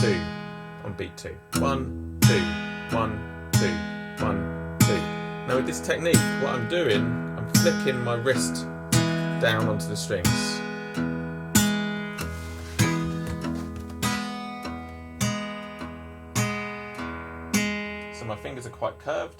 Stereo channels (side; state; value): both; identical; correlation 1.00